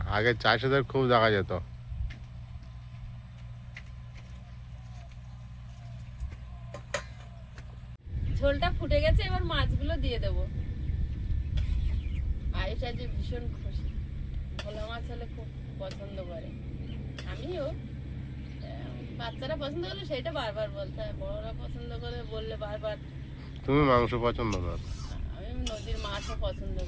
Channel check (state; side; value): identical; both; correlation 1.00